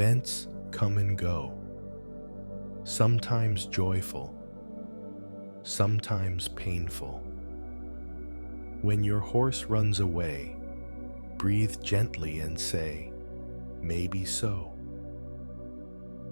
come and go, sometimes joyful, sometimes painful. When your horse runs away, breathe gently and say, maybe so.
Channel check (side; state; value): both; inverted; correlation -1.00